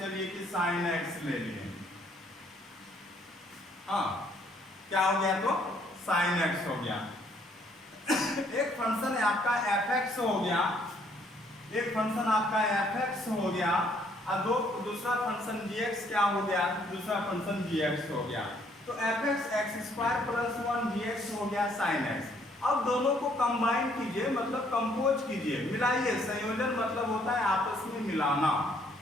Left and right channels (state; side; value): normal; both; correlation 0.66